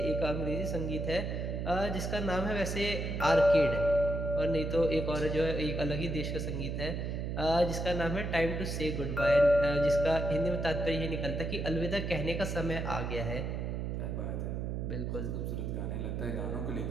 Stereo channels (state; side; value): noise; right; hum, 3 dB below the sound